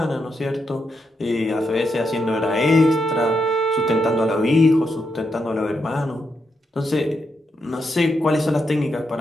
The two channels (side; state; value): both; normal; correlation 0.83